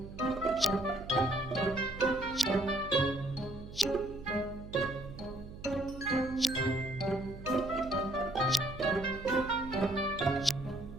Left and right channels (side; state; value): right; noise; hum, 14 dB below the sound